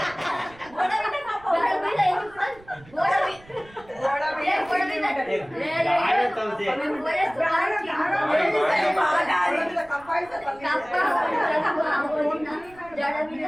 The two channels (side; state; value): right; noise; rumble, 24 dB below the sound